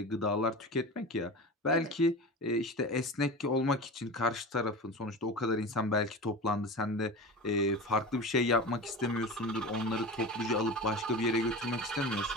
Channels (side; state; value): both; normal; correlation 0.30